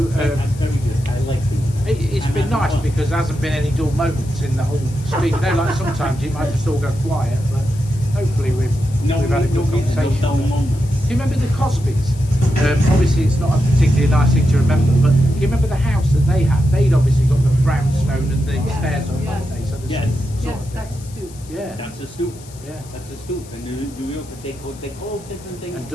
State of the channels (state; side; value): noise; left; hiss, 21 dB below the sound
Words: That's very good. I like it. it's been nice because there hasn't been any dull moments in the whole street. You know, like sometimes you might just all go quiet, but hopefully we've had a good conversation. No moments. Do you remember the Cosbys? Obviously, it's not a particularly nice thing to remember, but do you remember the house that they had? They'd obviously got the brownstone and the stairs on, yes. hadn't they? So there's Yes. some sort Yes, of that's thing. a stoop. Yeah, That's a stoop. yeah. That's a stoop. In New York, they call different things. And